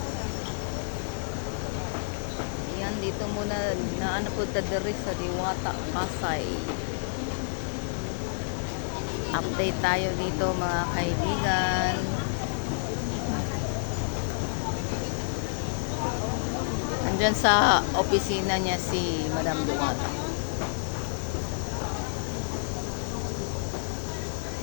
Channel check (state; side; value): silent; right; digital silence